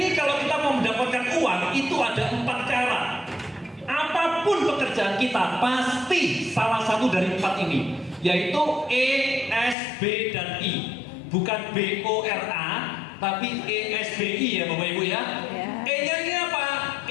kalau kita mau mendapatkan uang itu ada 4 cara. Apapun pekerjaan kita pasti salah satu dari 4 ini, yaitu E, S, B, dan I. Bukan B-O-R-A, tapi E-S-B-I ya Bapak Ibu ya. E-nya ini apa?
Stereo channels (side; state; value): right; drops out; at 9.8 s